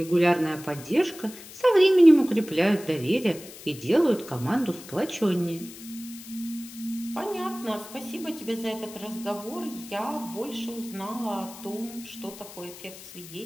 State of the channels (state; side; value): noise; left; hiss, 16 dB below the sound